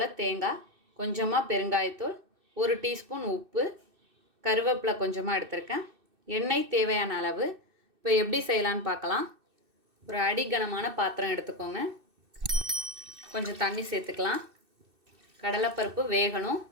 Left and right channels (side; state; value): left; late; 2.6 ms